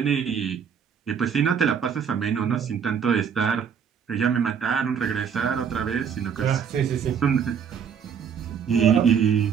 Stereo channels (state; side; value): quieter; left; 7.3 dB